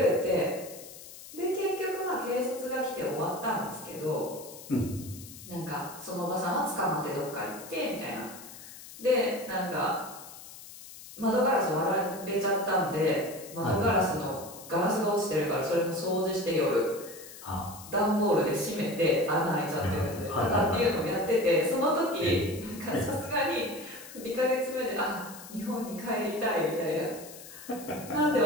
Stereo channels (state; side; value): noise; left; hiss, 16 dB below the sound